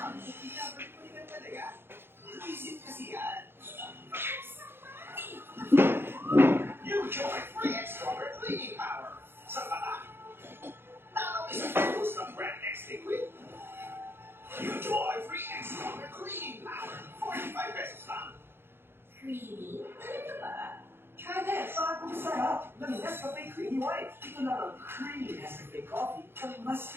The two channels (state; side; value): late; left; 0.11 ms